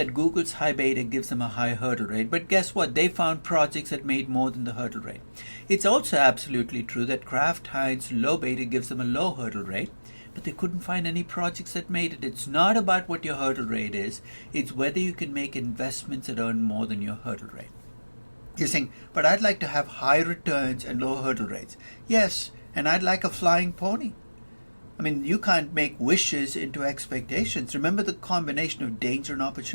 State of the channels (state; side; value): inverted; both; correlation -1.00